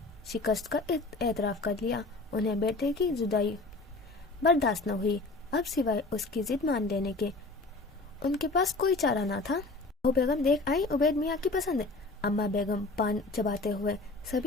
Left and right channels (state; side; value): quieter; right; 3.3 dB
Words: शिकस्त का एतराफ़ कर लिया। उन्हें बेटे की जुदाई बर्दाश्त न हुई। अब सिवाय उसकी जिद मान लेने के उनके पास कोई चारा ना था। वो बेगम देख आई उबैद मियाँ की पसंद। अम्मा बेगम पान चबाते हुए